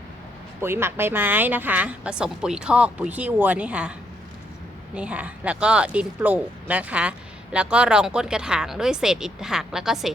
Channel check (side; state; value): both; normal; correlation 0.74